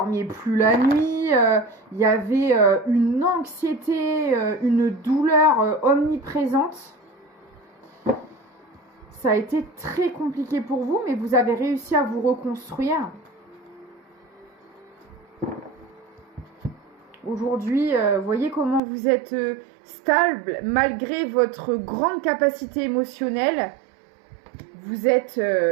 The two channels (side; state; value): left; drops out; at 18.8 s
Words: plus la nuit, il y avait une anxiété, une douleur omniprésente. Ça a été très compliqué pour vous, mais vous avez réussi à vous reconstruire. Aujourd'hui, voyez comment vous êtes stable malgré votre grande capacité émotionnelle. Vous êtes